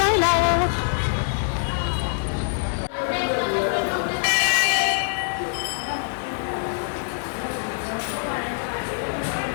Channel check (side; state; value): right; silent; 62 dB below the other